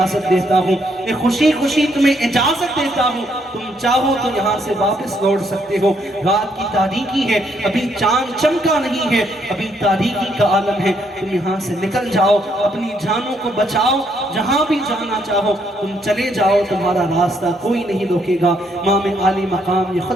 دیتا ہوں, میں خوشی خوشی تمہیں اجازت دیتا ہوں. تم چاہو تو یہاں سے واپس لوٹ سکتے ہو. رات کی تاریکی ہے, ابھی چاند چمکا نہیں ہے, ابھی تاریکی کا عالم ہے. تم یہاں سے نکل جاؤ, اپنی جانوں کو بچاؤ, جہاں بھی جانا چاہو تم چلے جاؤ, تمہارا راستہ کوئی نہیں روکے گا. امام عالی مقام یہ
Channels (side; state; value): both; normal; correlation 0.72